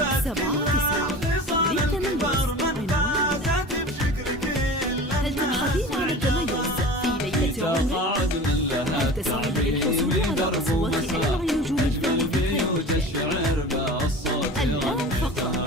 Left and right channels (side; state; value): both; normal; correlation 0.36